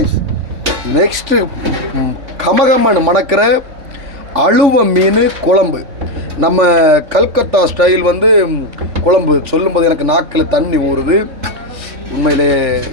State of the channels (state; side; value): late; left; 3.5 ms